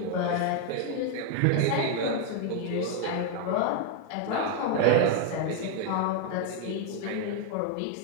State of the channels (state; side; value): different; both; correlation 0.01